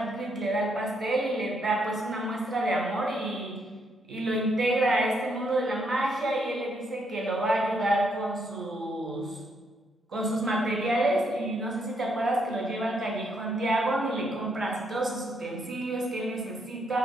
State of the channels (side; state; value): both; normal; correlation 0.75